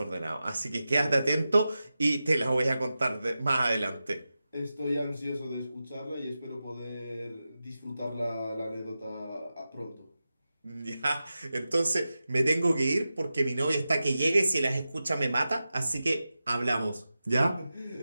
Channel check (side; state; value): both; inverted; correlation -0.92